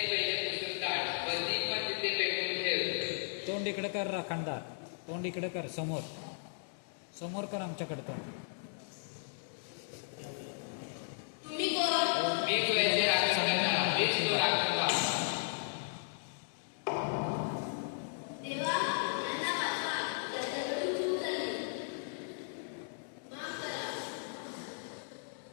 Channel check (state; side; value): silent; right; digital silence